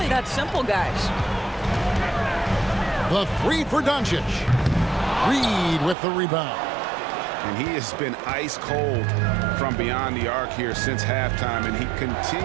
that simple, guys. The three for Doncic. Reed with the rebound. And he has been ice cold from beyond the arc here since halftime, and he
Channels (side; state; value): left; drops out; at 6.0 s